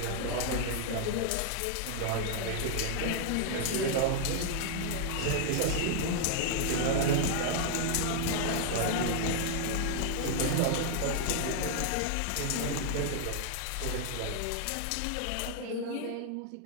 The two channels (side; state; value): both; different; correlation 0.00